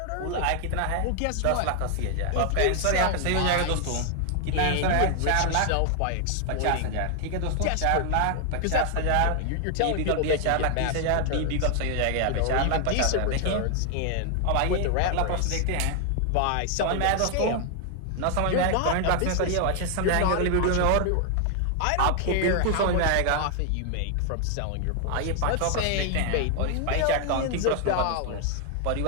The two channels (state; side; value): different; both; correlation 0.00